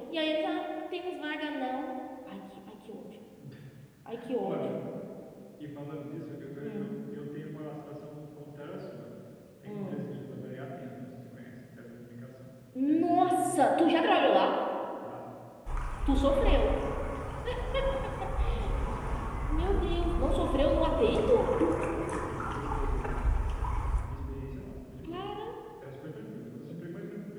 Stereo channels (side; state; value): both; identical; correlation 1.00